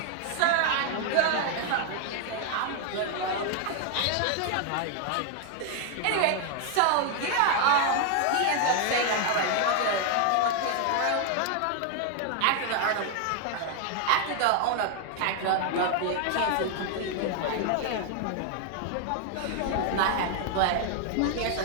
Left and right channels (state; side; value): different; both; correlation 0.00